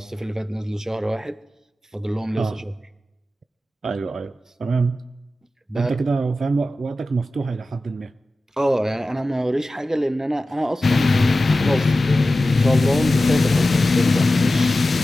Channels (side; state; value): both; normal; correlation 0.94